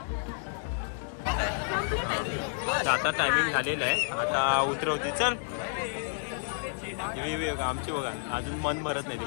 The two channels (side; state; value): right; silent; digital silence